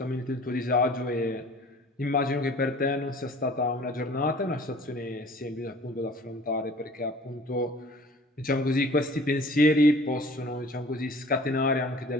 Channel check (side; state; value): both; normal; correlation 0.48